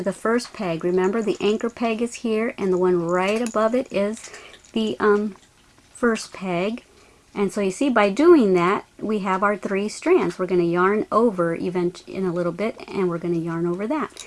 the first peg. Remember, the anchor peg is here, and the one right above it is the first peg. And so you see, by doing that, we have our 3 strands. We're going to yarn over even in a little bit, and we're going to yarn over that.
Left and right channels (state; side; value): identical; both; correlation 1.00